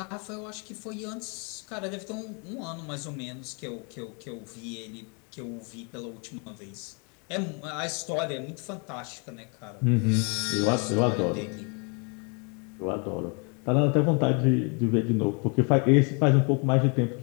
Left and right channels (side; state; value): right; quieter; 35.7 dB